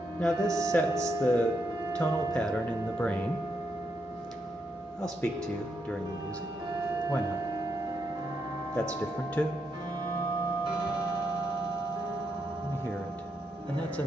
Now this sets the tonal pattern in the brain. I'll speak to you during the music. Why not? That's different too. Let me hear it. And that's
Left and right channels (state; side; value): normal; both; correlation 0.80